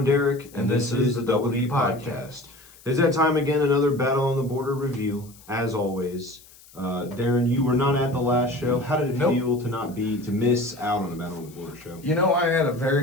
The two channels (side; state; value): left; noise; hiss, 24 dB below the sound